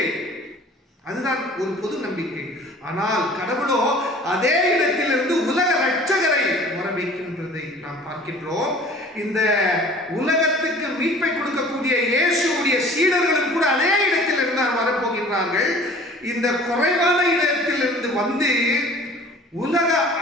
அதுதான் ஒரு பொது நம்பிக்கை. ஆனால் கடவுளோ அதே இடத்திலிருந்து உலக ரட்சகரை வர வைக்கின்றதை நாம் பார்க்கின்றோம். இந்த உலகத்துக்கு மீட்பை கொடுக்கக்கூடிய இயேசுடைய சீடர்களும் கூட அதே இடத்தில் இருந்து வரப்போகின்றார்கள். இந்த குறைவான இடத்திலிருந்து வந்து உலக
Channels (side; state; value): both; normal; correlation 0.47